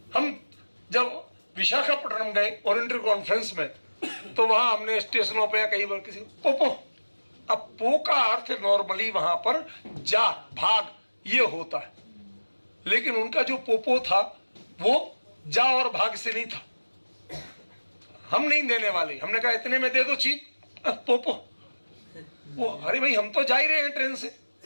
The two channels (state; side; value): inverted; both; correlation -1.00